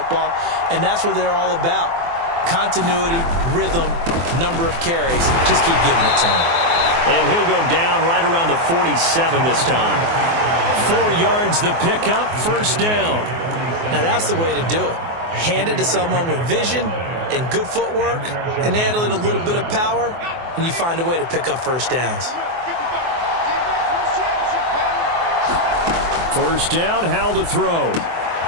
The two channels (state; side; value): late; left; 24 ms